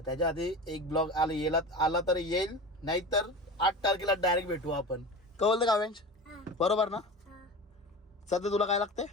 त्याच्या आधी एक ब्लॉग आला तर येईल. नाहीतर 8 तारखेला डायरेक्ट भेटू आपण. कळलं का वेंच? बरोबर ना? सध्या तुला काय लागते?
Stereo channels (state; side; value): normal; both; correlation 0.31